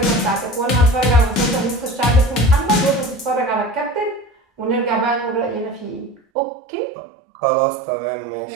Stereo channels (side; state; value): left; drops out; at 6.2 s